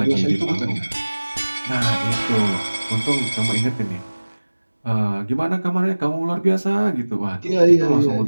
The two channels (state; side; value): inverted; both; correlation -1.00